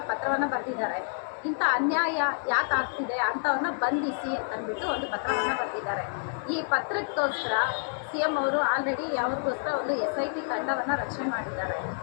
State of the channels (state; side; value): silent; right; 59 dB below the other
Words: ಪತ್ರವನ್ನು ಬರೆದಿದ್ದಾರೆ. ಇಂಥ ಅನ್ಯಾಯ ಯಾಕೆ ಆಗ್ತಿದೆ ಅಂಥವ್ರನ್ನ ಬಂಧಿಸಿ ಅಂತಂದ್ಬಿಟ್ಟು ಒಂದು ಪತ್ರವನ್ನು ಬರೆದಿದ್ದಾರೆ. ಈ ಪತ್ರಕ್ಕೋಸ್ಕರ CM ಅವರು ಆಲ್ರೆಡಿ ಅವ್ರಿಗೋಸ್ಕರ ಒಂದು SIT ತಂಡವನ್ನು ರಚನೆ ಮಾಡಿದ್ದಾರೆ.